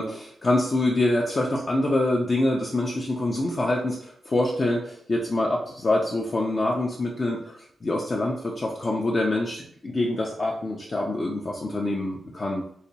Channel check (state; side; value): normal; both; correlation 0.90